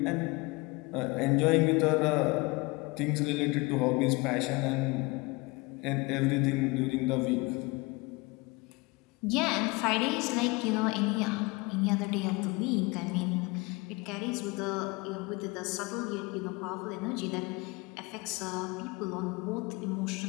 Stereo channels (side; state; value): right; quieter; 25.2 dB